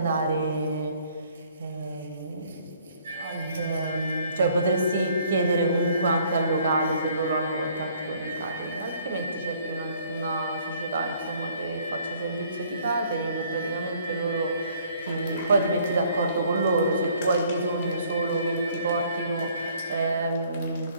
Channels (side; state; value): both; inverted; correlation -0.61